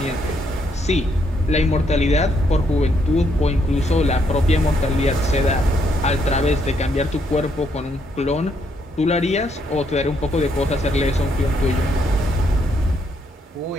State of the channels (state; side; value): normal; both; correlation 0.74